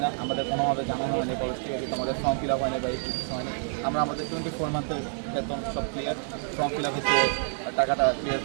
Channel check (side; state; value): left; silent; 59 dB below the other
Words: না আমাদের কোনোভাবে জানানো হয়নি কলেজ থেকে কিন্তু আমাদের ফর্ম ফিল আপ হয়নি বা এই কিছু হয়নি আমরা আমাদের 24 মান্থের বেতন সব ক্লিয়ার ফর্ম ফিল আপ হচ্ছে টাকাটা ক্লিয়ার